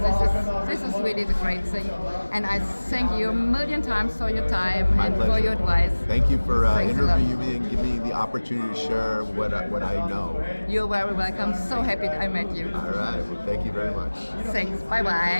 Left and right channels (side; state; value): both; inverted; correlation -1.00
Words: this is really the great thing. And I thank you a million times for your time and for your advice. Thank you for interviewing me and giving me the opportunity to share what I know. You're very welcome. So happy I met you. All right. Well, thank you very much. Thanks.